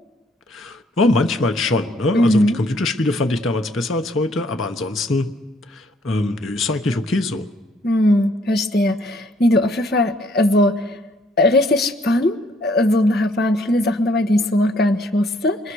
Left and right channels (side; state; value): both; normal; correlation 0.65